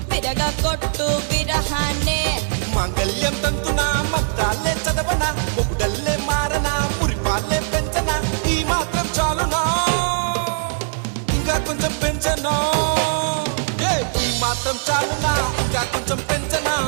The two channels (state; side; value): silent; left; 56 dB below the other